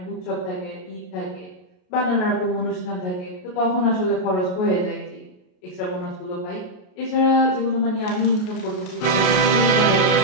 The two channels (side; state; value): right; late; 33 ms